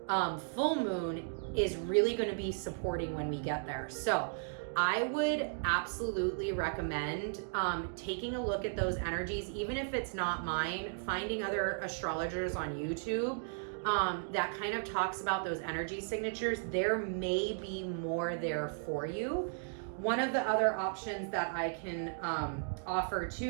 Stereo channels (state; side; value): silent; left; digital silence